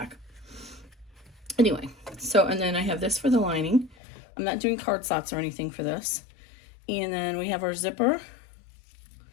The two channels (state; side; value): drops out; right; at 4.0 s